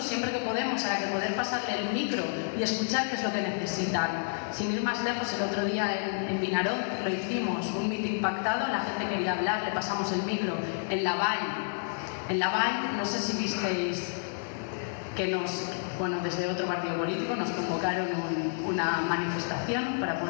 siempre que podemos, a la que poder pasarle el micro y escuchar qué es lo que necesitan. Sin ir más lejos, el otro día en Vinaroz lo hicimos, un meeting pactado, la gente quería hablar, le pasamos el micro. En la Vall, no sé si visteis que desde otro partido político nos convocaron una manifestación para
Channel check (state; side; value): silent; right; digital silence